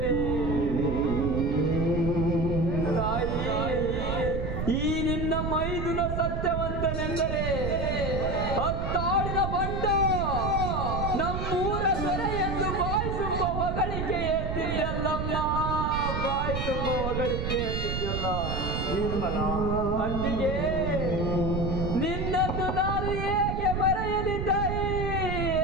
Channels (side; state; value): right; noise; rumble, 2 dB below the sound